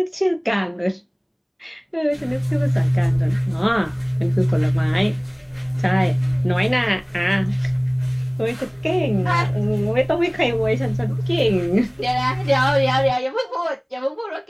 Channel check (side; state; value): both; identical; correlation 1.00